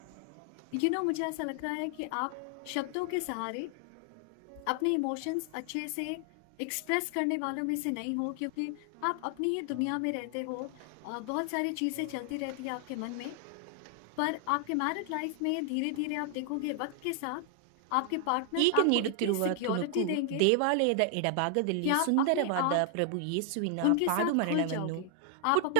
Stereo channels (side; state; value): both; different; correlation 0.00